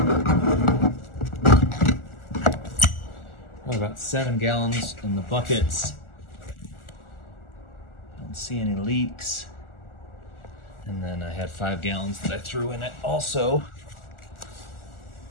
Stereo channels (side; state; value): right; late; 1.4 ms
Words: have about 7 gallons in the buckets. Don't see any leaks. And then I had 5 gallons that I threw in it also.